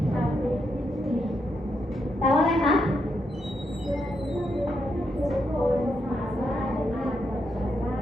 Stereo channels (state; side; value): normal; both; correlation 0.81